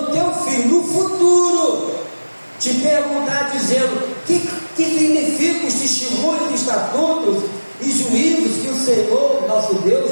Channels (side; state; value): both; inverted; correlation -1.00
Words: teu filho no futuro te perguntar, dizendo: que significam os testemunhos, estatutos e juízos que o Senhor, nosso Deus,